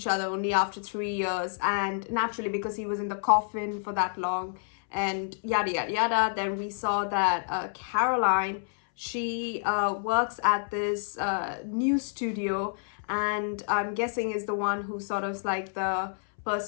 other only after 3 years, and naturally because he was in the coffin for that long and yada yada yada. Then we saw that Caroline, she works at this news studio, and I'm guessing is the one who sort of like the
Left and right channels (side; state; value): right; silent; 59 dB below the other